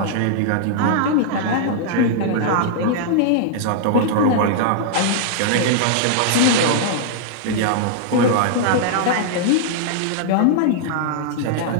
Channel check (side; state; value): both; different; correlation -0.01